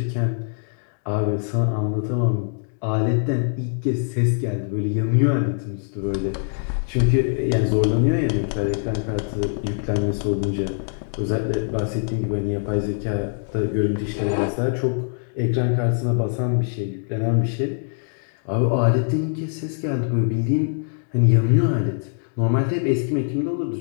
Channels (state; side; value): silent; right; digital silence